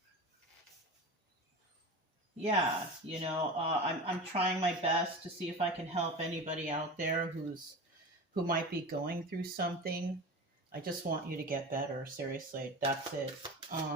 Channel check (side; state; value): both; normal; correlation 0.30